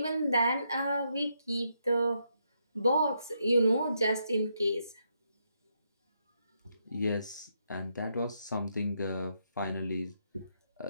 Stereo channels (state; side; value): inverted; both; correlation -0.79